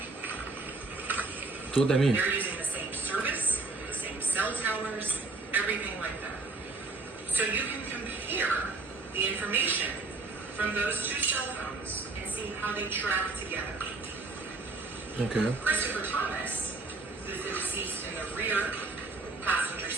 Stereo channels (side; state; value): left; quieter; 3.6 dB